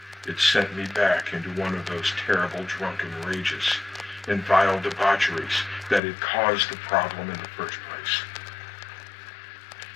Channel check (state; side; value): drops out; right; at 6.0 s